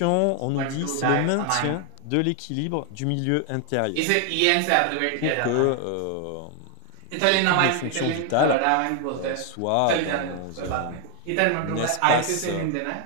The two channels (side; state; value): both; different; correlation 0.01